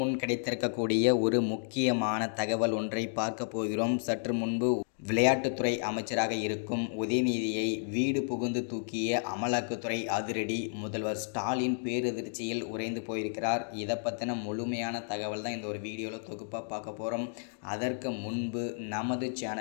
கிடைத்திருக்கக்கூடிய ஒரு முக்கியமான தகவல் ஒன்றை பார்க்க போகிறோம். சற்று முன்பு விளையாட்டுத்துறை அமைச்சராக இருக்கும் உதயநிதியை வீடு புகுந்து தூக்கிய அமலாக்கத்துறை அதிரடி. முதல்வர் ஸ்டாலின் பேரதிர்ச்சியில் உறைந்து போயிருக்கிறார். இதை பற்றின முழுமையான தகவல் தான் இந்த ஒரு வீடியோவில் தொகுப்பாக பார்க்க போகிறோம். அதற்கு முன்பு நமது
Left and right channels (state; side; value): silent; right; digital silence